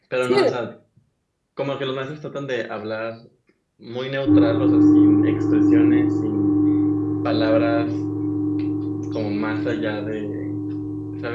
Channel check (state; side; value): identical; both; correlation 1.00